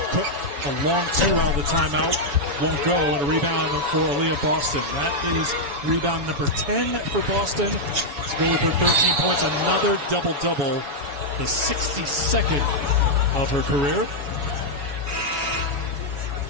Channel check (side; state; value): left; late; 7.1 ms